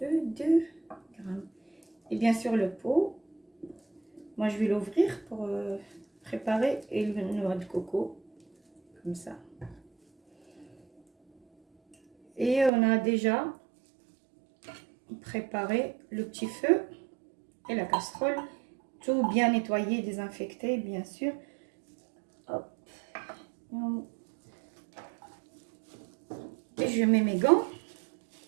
2 grammes. Et bien sûr le pot, moi je vais l'ouvrir pour préparer et le noix de coco, comme ça. Et on a déjà préparé le petit feu et la casserole, tout bien nettoyé, désinfecté bien sûr. Hop. Et je mets mes gants,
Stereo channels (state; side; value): drops out; left; at 12.7 s